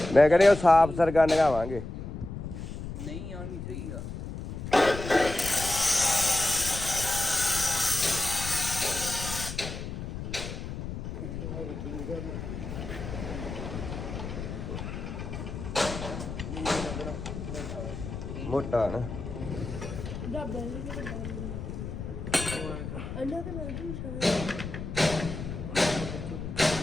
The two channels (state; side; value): noise; left; rumble, 7 dB below the sound